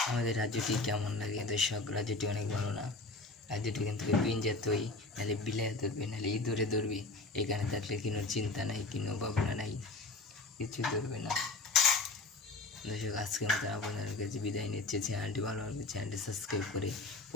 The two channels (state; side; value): quieter; right; 3.4 dB